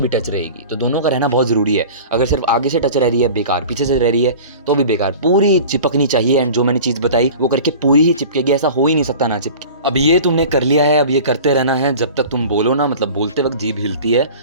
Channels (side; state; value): both; inverted; correlation -0.39